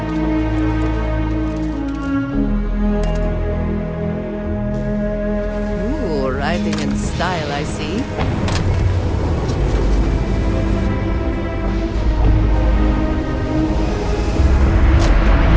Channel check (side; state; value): both; identical; correlation 1.00